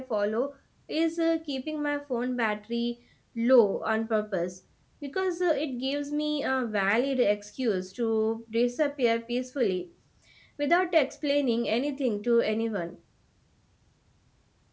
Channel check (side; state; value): both; identical; correlation 1.00